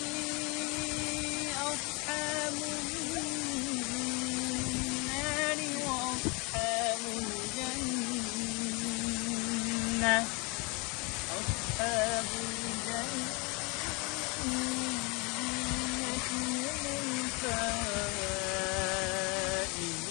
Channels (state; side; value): quieter; right; 29.7 dB